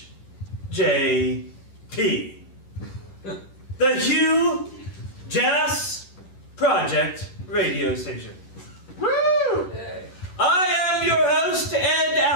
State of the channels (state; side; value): late; right; 11 ms